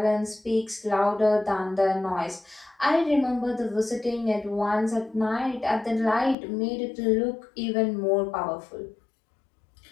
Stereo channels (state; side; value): drops out; right; at 6.4 s